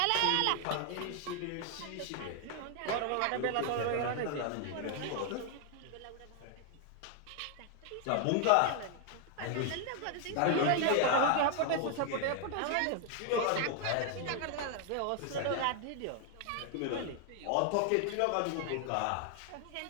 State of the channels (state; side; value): different; both; correlation 0.00